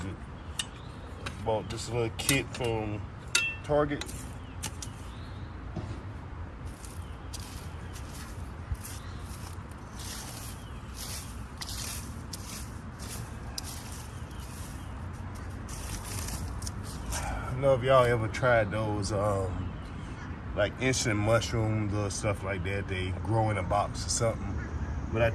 Bought this little kit from Target. I don't know if y'all ever tried those like instant mushrooms or stuff like that. They grow in a box or something. But I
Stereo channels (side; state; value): both; identical; correlation 1.00